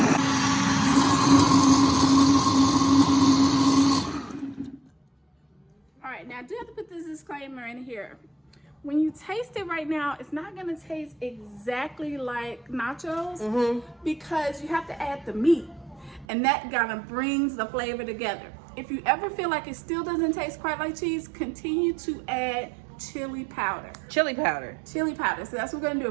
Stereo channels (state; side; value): drops out; left; at 16.2 s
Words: All right, now I do have to put this disclaimer in here. When you taste it right now, it's not gonna taste exactly like nachos because you have to add the meat. And that kind of brings the flavor together. If you ever feel like it still doesn't taste quite like cheese, continue to add chili powder. Chili powder. Chili powder. So that's what we're gonna do.